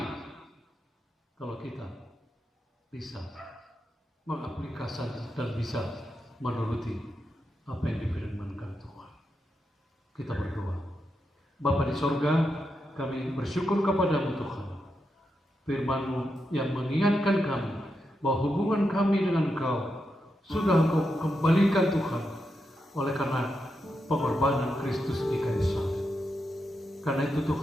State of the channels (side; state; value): both; normal; correlation 0.85